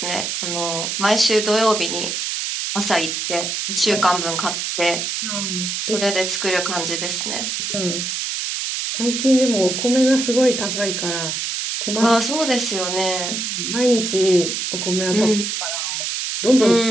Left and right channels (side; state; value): right; noise; hiss, 2 dB below the sound